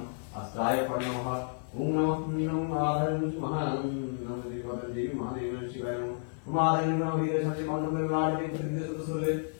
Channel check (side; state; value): right; silent; 57 dB below the other